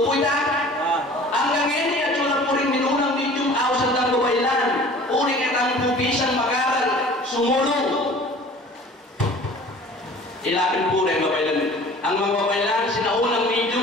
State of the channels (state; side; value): normal; both; correlation 0.46